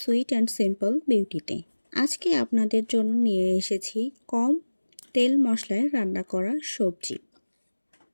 and simple বিউটিতে। আজকে আপনাদের জন্য নিয়ে এসেছি কম তেল মশলায় রান্না করা সবজি।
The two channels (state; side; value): inverted; both; correlation -1.00